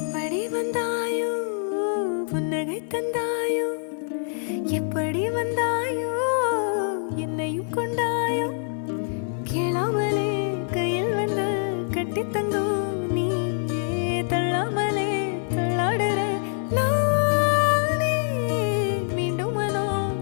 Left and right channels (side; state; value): right; silent; 56 dB below the other